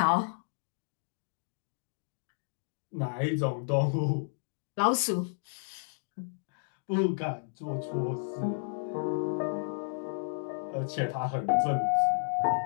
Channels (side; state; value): right; silent; digital silence